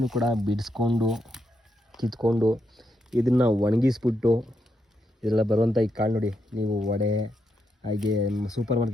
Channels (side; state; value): both; normal; correlation 0.82